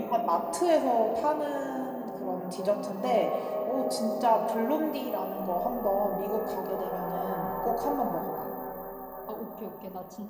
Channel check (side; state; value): both; identical; correlation 1.00